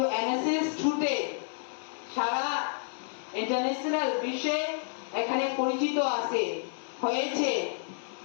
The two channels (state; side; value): silent; right; digital silence